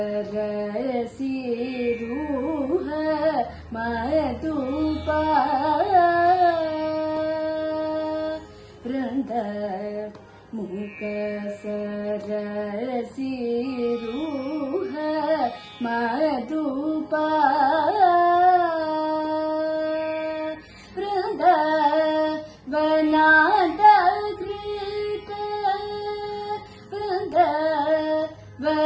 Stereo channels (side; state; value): both; identical; correlation 1.00